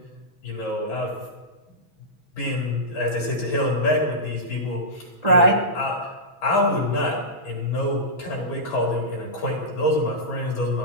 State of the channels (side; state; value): right; late; 6.2 ms